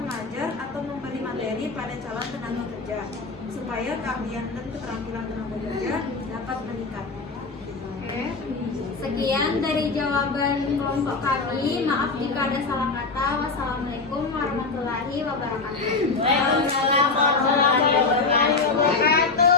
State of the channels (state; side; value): quieter; right; 4.1 dB